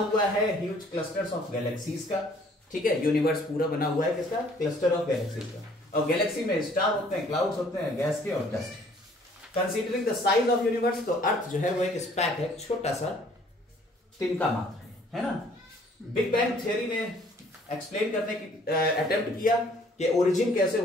है ह्यूज क्लस्टर्स ऑफ गैलेक्सीज का, ठीक है। यूनिवर्स पूरा बना हुआ है किसका, क्लस्टर ऑफ गैलेक्सीज का, और गैलेक्सी में स्टार होते हैं, क्लाउड्स होते हैं, गैस के और dust. Considering the size of universe, तो अर्थ जो है वो एक स्पैक है, छोटा सा तिनका मात्र है ना। बिग बैंग थ्योरी ने एक्सप्लेन करने की अटेम्प्ट किया कि ओरिजिन कैसे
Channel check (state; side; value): normal; both; correlation 0.58